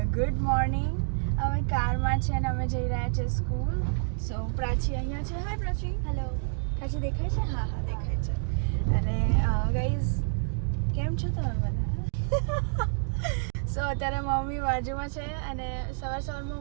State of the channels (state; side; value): silent; left; digital silence